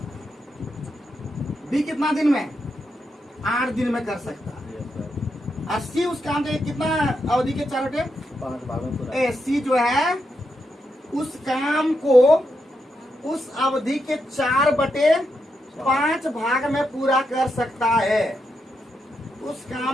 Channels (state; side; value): normal; both; correlation 0.84